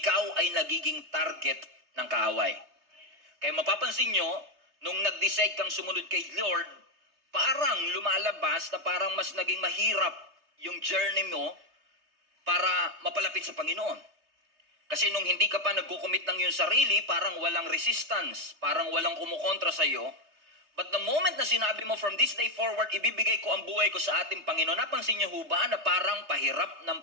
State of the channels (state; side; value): late; left; 3.3 ms